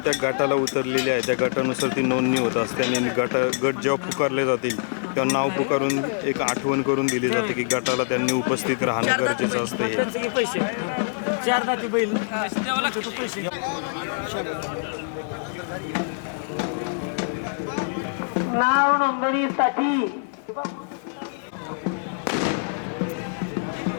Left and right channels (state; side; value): silent; right; digital silence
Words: गटाला उतरलेल्या आहे त्या गटानुसार ती नोंदणी होत असते आणि गट जेव्हा पुकारले जातील तेव्हा नाव पुकारून एक आठवण करून दिली जाते की गटाला त्यांनी उपस्थित राहणं गरजेचं असतं. हे पैसे 4 दाती बैल पैसे. नाव नोंदणीसाठी